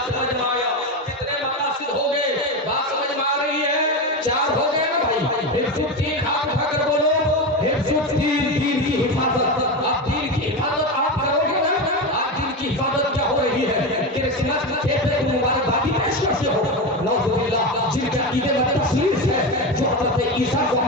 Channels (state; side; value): normal; both; correlation 0.18